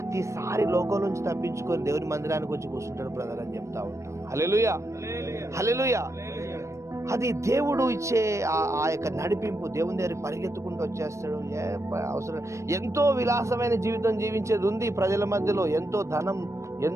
లోకం నుంచి తప్పించుకొని దేవుని మందిరానికి వచ్చి కూర్చుంటాడు బ్రదర్ అని చెప్తా ఉంటాం. హల్లెలూయా, హల్లెలూయా. అది దేవుడు ఇచ్చే ఆ యొక్క నడిపింపు. దేవుని దగ్గరికి పరిగెత్తుకుంటూ వచ్చేస్తాడు. అవసరం. ఎంతో విలాసమైన జీవితం జీవించేది ఉంది ప్రజల మధ్యలో. ఎంతో ధనం,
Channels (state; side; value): late; left; 0.14 ms